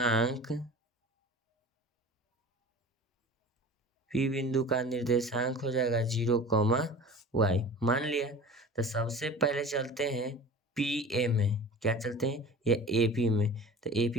P बिंदु का निर्देशांक हो जाएगा 0, y। मान लिया। तो सबसे पहले चलते हैं PA में, क्या चलते हैं, या AP में। तो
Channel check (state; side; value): normal; both; correlation 0.38